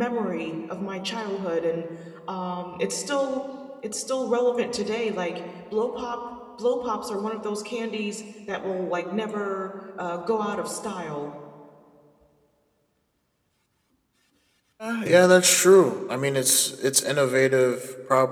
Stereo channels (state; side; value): identical; both; correlation 1.00